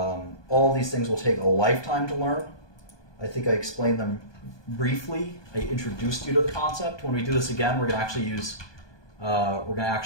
these things will take a lifetime to learn. I think I explained them briefly. I introduced you to the concept. When we do this again, we're going to actually use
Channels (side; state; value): right; late; 1.2 ms